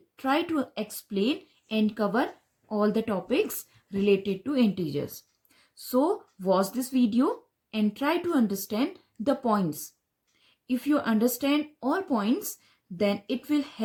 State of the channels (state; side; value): identical; both; correlation 1.00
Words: try to explain and cover all the topics related to integers. So watch this video and try to understand the points. If you understand all points, then it will